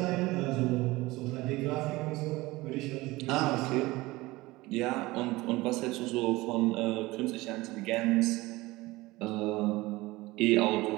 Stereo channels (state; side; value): quieter; left; 20.3 dB